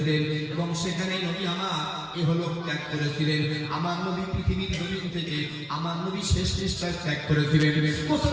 এবং সেখানে নবী আমার ইহলোক ত্যাগ করেছিলেন। আমার নবী পৃথিবীর জমিন থেকে আমার নবী শেষ নিঃশ্বাস ত্যাগ করেছিলেন।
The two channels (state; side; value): identical; both; correlation 1.00